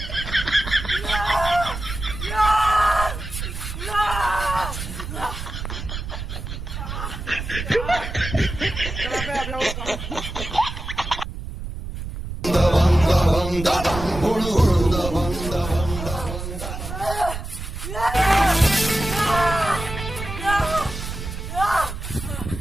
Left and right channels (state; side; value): noise; right; rumble, 7 dB below the sound